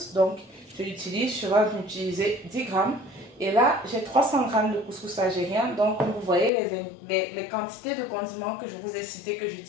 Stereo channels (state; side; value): drops out; right; at 6.5 s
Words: donc je vais utiliser 10 grammes. Et là, j'ai 300 grammes de couscous algérien. Donc, comme vous voyez, les quantités de condiments que je vous ai citées que